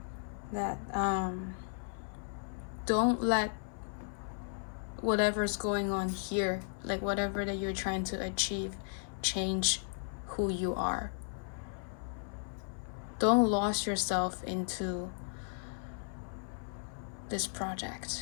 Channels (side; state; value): right; silent; 54 dB below the other